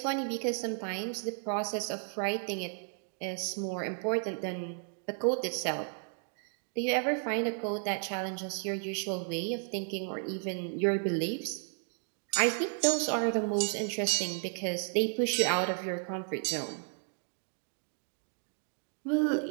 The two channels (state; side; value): silent; left; 55 dB below the other